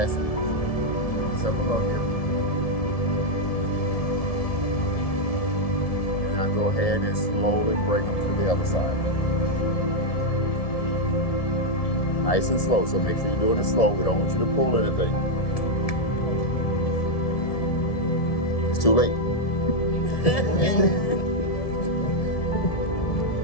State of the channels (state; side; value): late; right; 1.7 ms